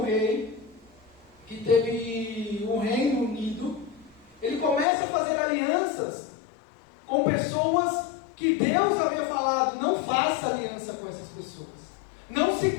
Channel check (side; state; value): right; drops out; at 4.9 s